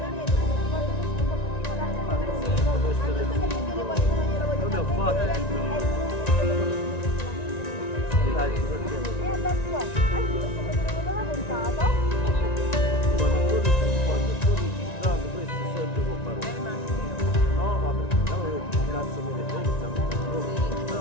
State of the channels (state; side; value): late; right; 1.9 ms